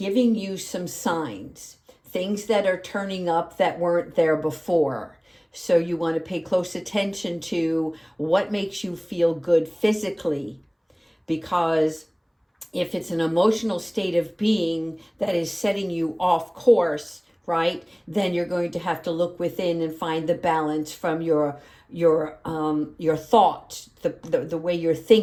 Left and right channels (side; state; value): both; identical; correlation 1.00